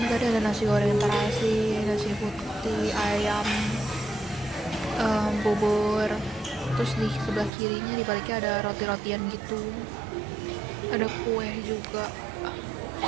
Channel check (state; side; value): drops out; left; at 7.5 s